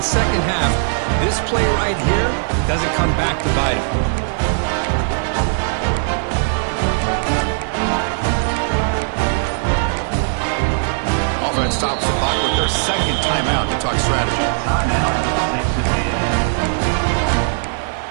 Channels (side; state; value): left; silent; 64 dB below the other